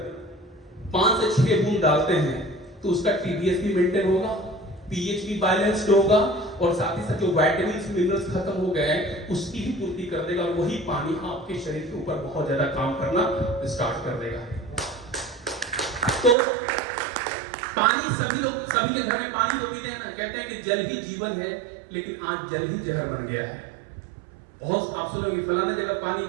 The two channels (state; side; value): drops out; left; at 16.4 s